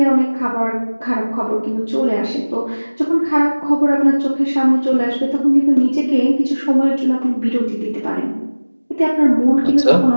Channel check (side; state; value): both; inverted; correlation -1.00